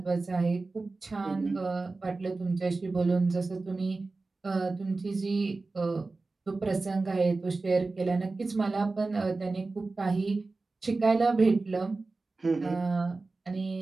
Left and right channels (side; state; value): left; quieter; 3.6 dB